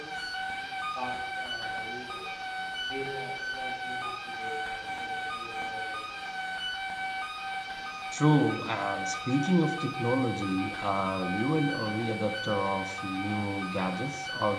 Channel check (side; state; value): both; identical; correlation 1.00